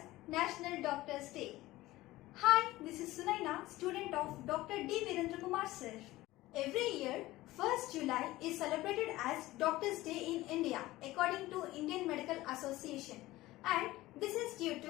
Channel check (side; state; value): right; quieter; 17.6 dB